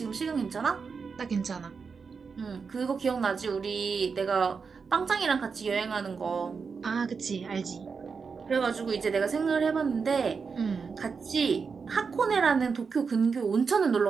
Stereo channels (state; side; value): quieter; left; 5.4 dB